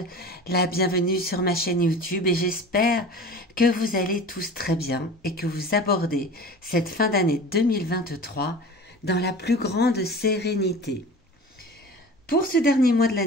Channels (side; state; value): both; normal; correlation 0.37